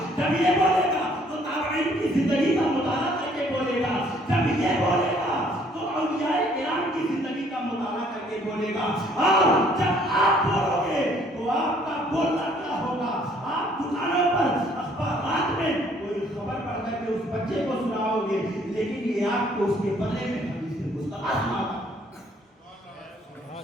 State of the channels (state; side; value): normal; both; correlation 0.62